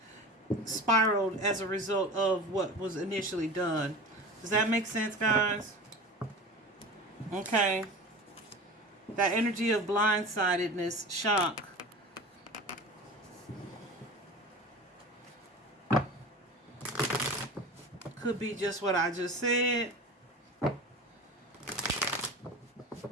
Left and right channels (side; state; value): both; normal; correlation 0.35